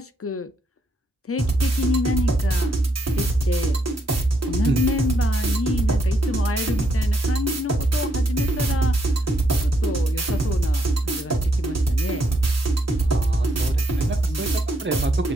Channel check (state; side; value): normal; both; correlation 0.75